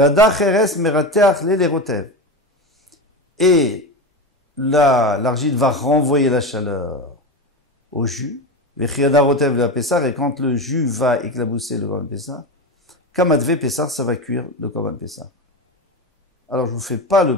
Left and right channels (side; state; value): both; normal; correlation 0.20